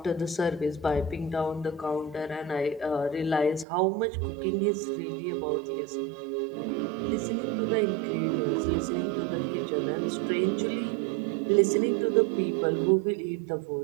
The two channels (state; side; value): drops out; left; at 3.7 s